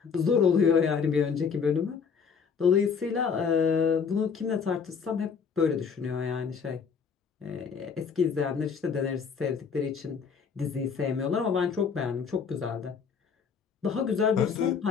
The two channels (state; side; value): quieter; right; 6.1 dB